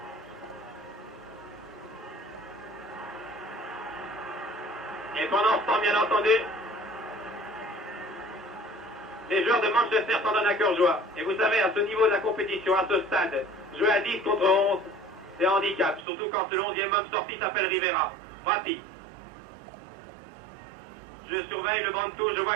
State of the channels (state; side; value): drops out; left; at 16.1 s